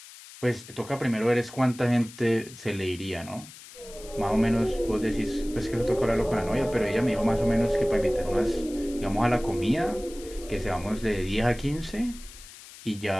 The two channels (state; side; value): noise; left; hiss, 18 dB below the sound